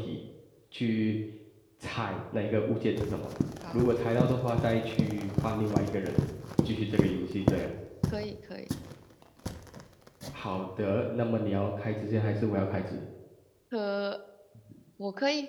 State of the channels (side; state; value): both; identical; correlation 1.00